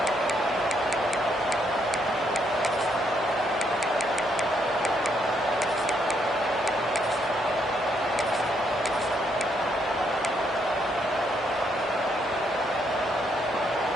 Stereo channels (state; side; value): normal; both; correlation 0.74